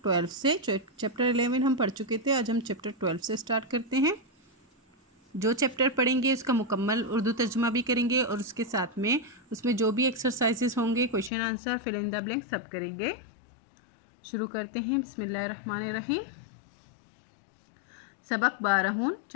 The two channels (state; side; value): drops out; right; at 11.3 s